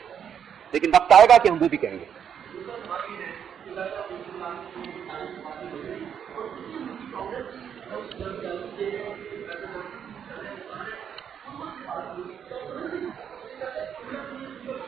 لیکن وقت آئے گا کہ ہم وہ بھی کہیں گے.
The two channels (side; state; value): left; quieter; 8.2 dB